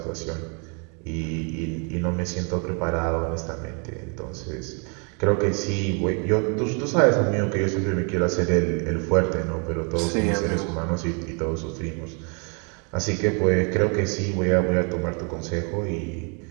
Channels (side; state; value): left; quieter; 36.6 dB